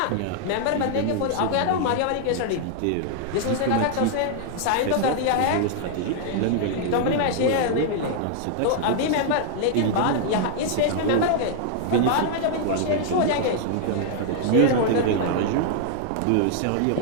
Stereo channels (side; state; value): both; different; correlation -0.01